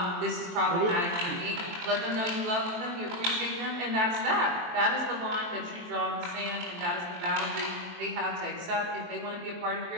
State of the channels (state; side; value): late; left; 23 ms